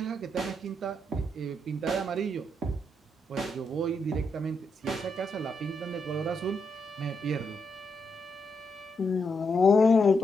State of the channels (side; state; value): both; normal; correlation 0.81